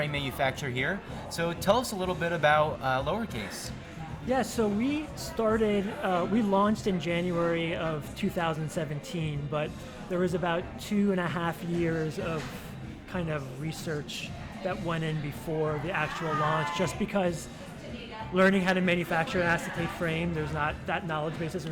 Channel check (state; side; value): identical; both; correlation 1.00